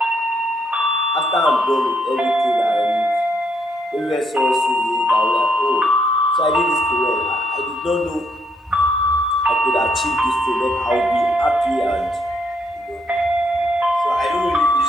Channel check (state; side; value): normal; both; correlation 0.73